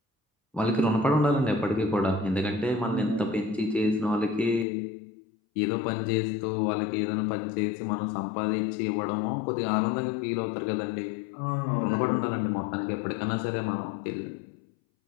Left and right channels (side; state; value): right; drops out; at 4.7 s